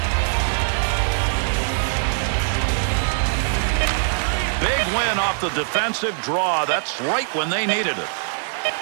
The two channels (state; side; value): silent; left; digital silence